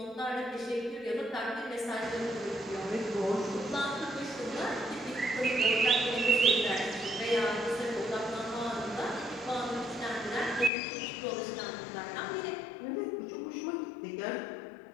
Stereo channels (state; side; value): drops out; right; at 10.7 s